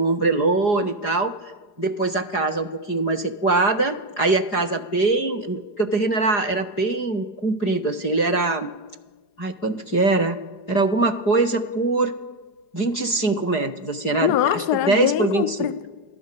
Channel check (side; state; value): right; late; 4.8 ms